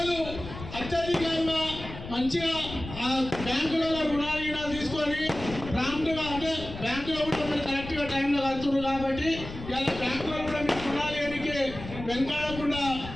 అత్యధికంగా మంచిగా ఆ బ్యాంకులలో రుణాలు తీసుకొని ప్రాంప్ట్గా, అంటే బ్యాంకులో కూడా మీరు కరెక్ట్గా టైంలో కడుతున్నారు కాబట్టి ఇలా బ్యాంకులో కూడా మీకు రుణాలు ఏనికి వెనకాడకుండా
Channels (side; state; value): left; noise; rumble, 11 dB below the sound